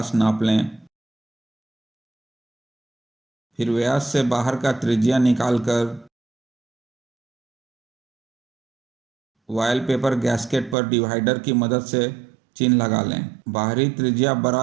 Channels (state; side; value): drops out; left; at 10.8 s